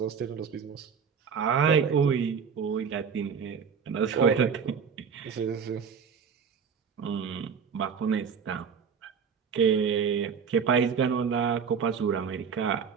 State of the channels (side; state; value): left; quieter; 6.5 dB